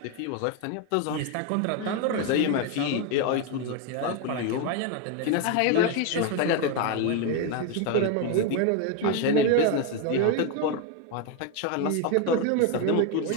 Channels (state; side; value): different; both; correlation 0.02